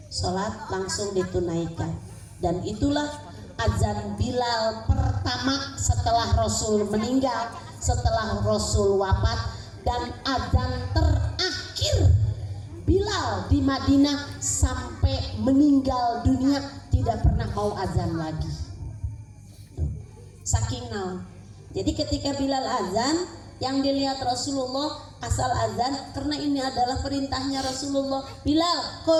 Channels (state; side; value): identical; both; correlation 1.00